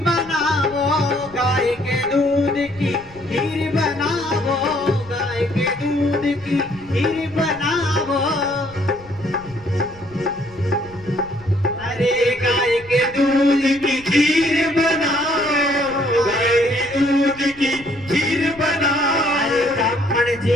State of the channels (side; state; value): left; noise; rumble, 22 dB below the sound